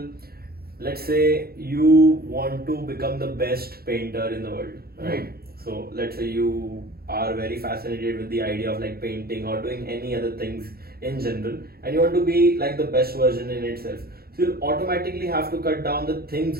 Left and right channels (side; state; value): left; late; 0.44 ms